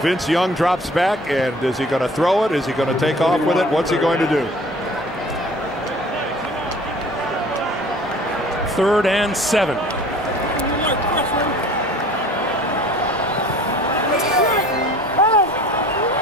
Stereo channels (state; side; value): normal; both; correlation 0.48